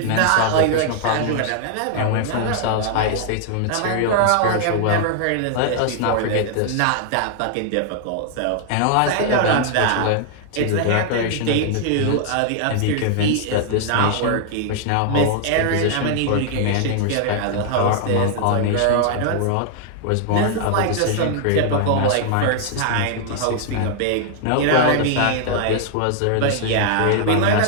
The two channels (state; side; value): different; both; correlation 0.00